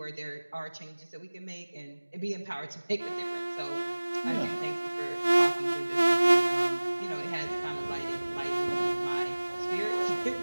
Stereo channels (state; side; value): inverted; both; correlation -1.00